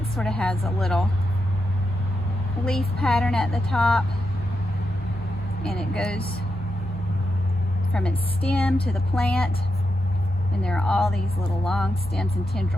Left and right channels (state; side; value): normal; both; correlation 0.86